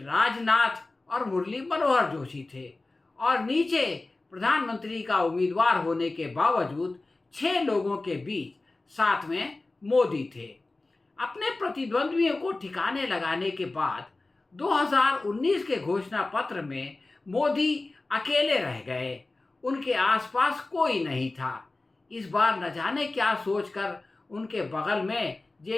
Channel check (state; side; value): quieter; right; 3.2 dB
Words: राजनाथ और मुरली मनोहर जोशी थे और नीचे प्रधानमंत्री का उम्मीदवार होने के बावजूद 6 लोगों के बीच साथ में मोदी थे। अपने प्रतिद्वंद्वियों को ठिकाने लगाने के बाद 2019 के घोषणा पत्र में मोदी अकेले रह गए, उनके आसपास कोई नहीं था। इस बार न जाने क्या सोचकर उनके बगल में